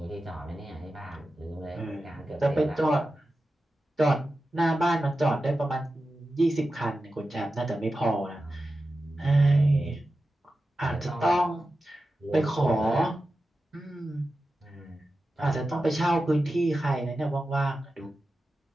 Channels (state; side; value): normal; both; correlation 0.93